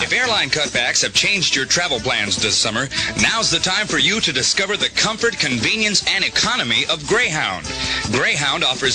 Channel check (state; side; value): identical; both; correlation 1.00